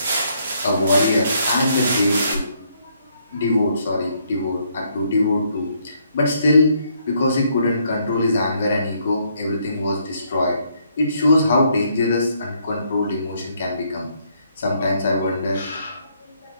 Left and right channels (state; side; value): inverted; both; correlation -0.71